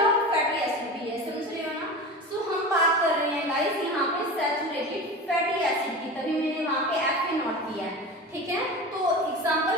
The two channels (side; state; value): both; normal; correlation 0.30